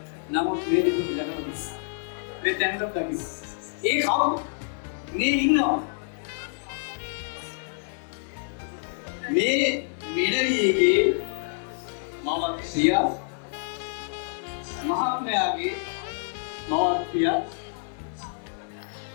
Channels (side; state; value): right; silent; digital silence